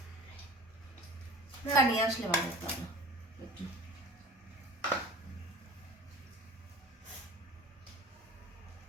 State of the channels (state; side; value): normal; both; correlation 0.41